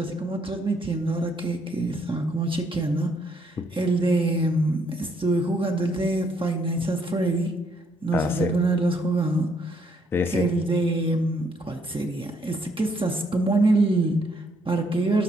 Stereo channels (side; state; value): both; normal; correlation 0.70